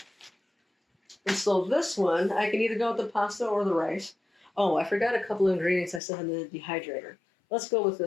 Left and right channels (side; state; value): right; drops out; at 6.0 s